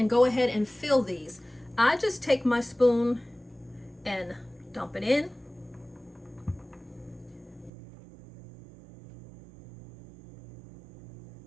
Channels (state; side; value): drops out; left; at 7.7 s